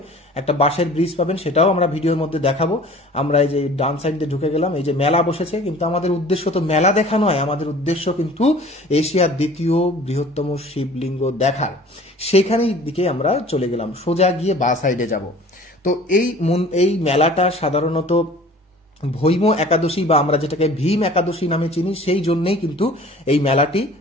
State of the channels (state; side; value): normal; both; correlation 0.47